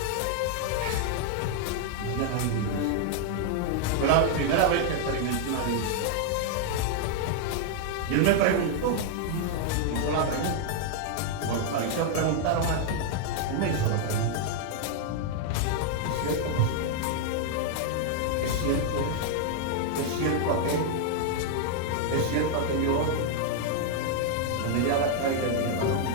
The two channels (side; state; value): both; different; correlation 0.00